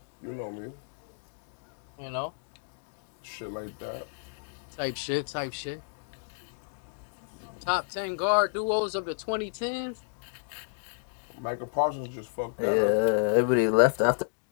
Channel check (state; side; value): silent; right; digital silence